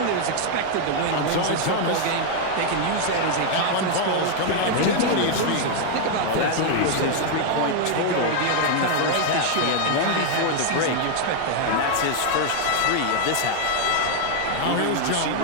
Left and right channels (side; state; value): both; different; correlation 0.00